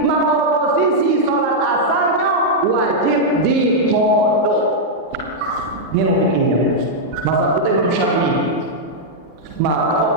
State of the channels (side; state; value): both; normal; correlation -0.04